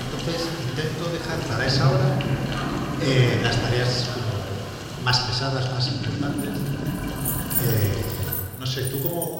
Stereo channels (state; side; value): identical; both; correlation 1.00